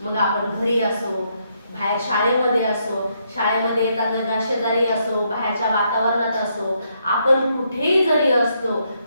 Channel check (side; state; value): both; inverted; correlation -0.76